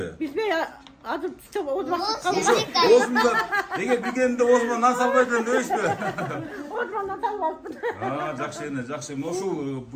Билбей, азыр озмакка Озмунда, эгер билгенде озмон нан салбай дедим дебейсизби? озмондан салбайбын. Жакшы эне, жакшы. Ушул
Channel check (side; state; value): both; identical; correlation 1.00